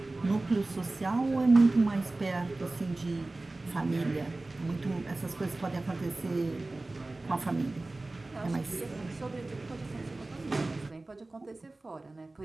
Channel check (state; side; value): quieter; left; 3.0 dB